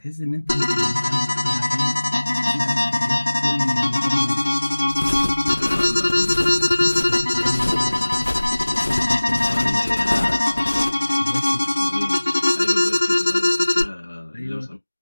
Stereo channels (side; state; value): both; inverted; correlation -1.00